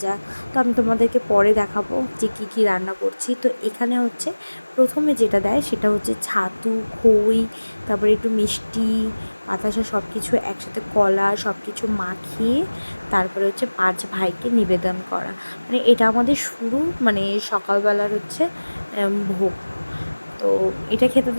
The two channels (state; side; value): inverted; both; correlation -1.00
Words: তো আমি তোমাদেরকে পরে দেখাবো যে কী কী রান্না করছি। তো এখানে হচ্ছে প্রথমে যেটা দেয় সেটা হচ্ছে ছাতু, খই, তারপরে একটু মিষ্টি, বাতাসা, সব কিছু একসাথে, কলা, সব কিছু মাখিয়ে তারপরে হচ্ছে 5 ভাইকে নিবেদন করা। মানে এটা আমাদের শুরু, মানে সকালবেলার হচ্ছে ভোগ। তো এটা খেতে